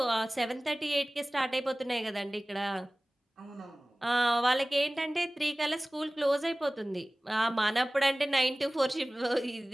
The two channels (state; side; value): normal; both; correlation 0.98